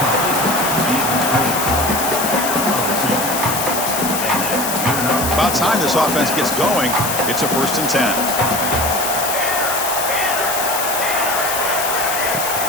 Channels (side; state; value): left; noise; hiss, 3 dB below the sound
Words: About time this offense gets going. It's a 1st and 10.